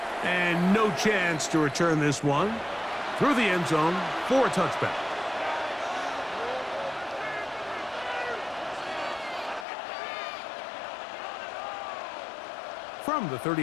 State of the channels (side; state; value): right; drops out; at 9.7 s